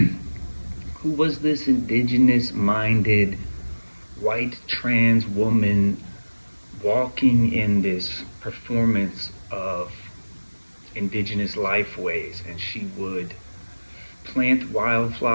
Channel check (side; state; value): both; inverted; correlation -1.00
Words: who was this indigenous minded white trans woman walking in this performance of indigenous lifeways, and she would plant